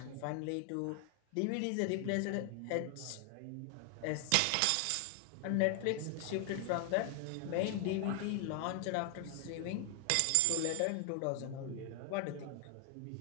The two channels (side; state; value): both; different; correlation 0.00